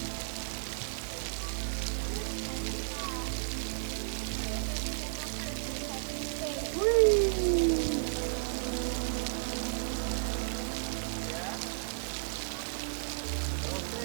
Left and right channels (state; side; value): silent; left; 55 dB below the other